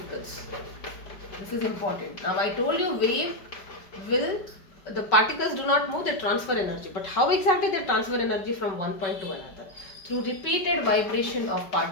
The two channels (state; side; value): late; right; 5.0 ms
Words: This is important. Now I told you wave will, the particles do not move, they transfer energy. But how exactly they transfer energy from one point to another? Through repeated vibration of